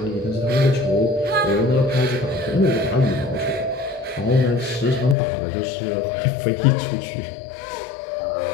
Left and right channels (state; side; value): drops out; right; at 5.2 s